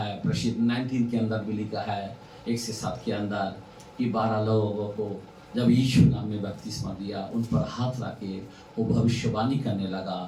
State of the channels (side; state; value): both; identical; correlation 1.00